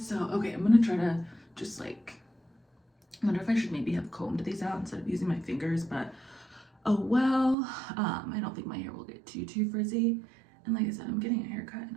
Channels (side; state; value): left; drops out; at 7.6 s